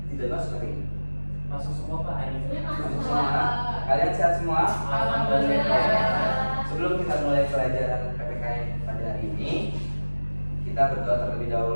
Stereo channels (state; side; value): inverted; both; correlation -1.00